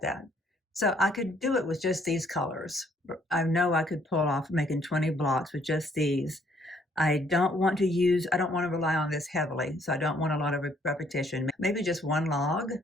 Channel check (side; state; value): both; normal; correlation 0.65